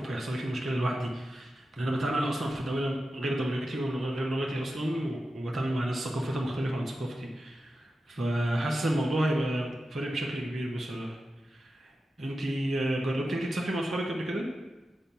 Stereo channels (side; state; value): both; normal; correlation 0.91